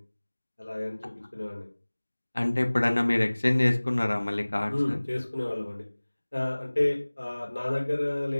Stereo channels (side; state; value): both; inverted; correlation -1.00